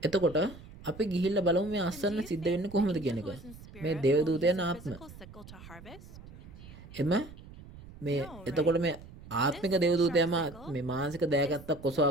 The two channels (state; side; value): noise; right; rumble, 17 dB below the sound